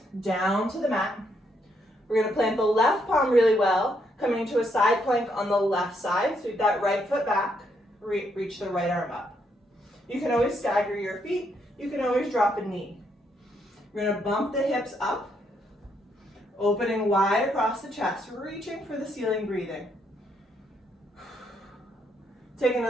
down to the mat. We're going to plant the left palm really well, coming to a side plank on the left side. Sweep that right foot back, reach the right arm up. You can always stagger your feet. You can always drop a knee. We're going to bump the hips up, opening wide across the chest, reaching for the ceiling, breathing. Take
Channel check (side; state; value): both; normal; correlation 0.75